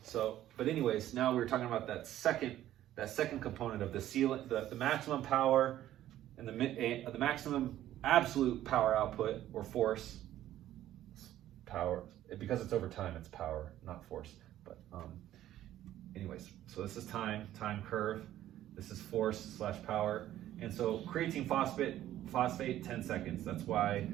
anyways, now we're talking about that second component of the ceiling, the maximum power, and the maximum absolute power output or force. Power, because it's over time, it's power, not force. But anyways, so this is time curve. This is force / power, and so creatine phosphate 10 seconds. That's why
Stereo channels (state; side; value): quieter; left; 13.0 dB